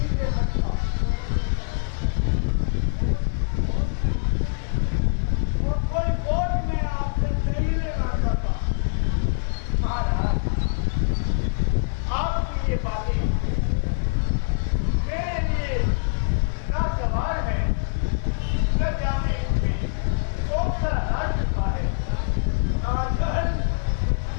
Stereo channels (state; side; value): silent; right; digital silence